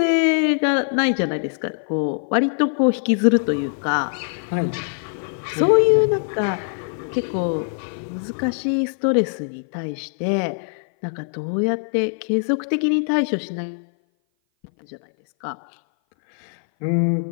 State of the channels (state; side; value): silent; right; 58 dB below the other